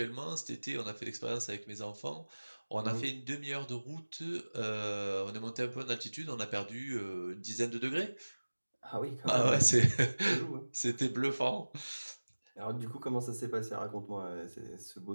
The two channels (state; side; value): inverted; both; correlation -1.00